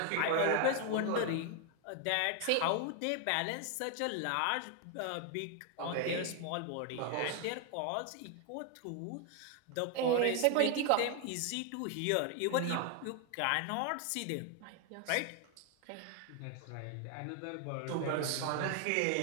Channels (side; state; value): both; different; correlation 0.00